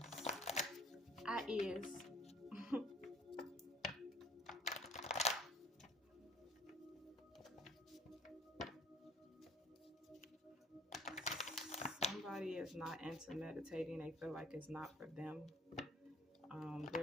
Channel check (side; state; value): both; normal; correlation 0.54